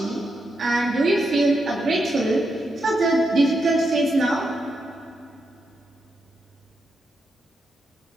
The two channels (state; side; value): normal; both; correlation 0.84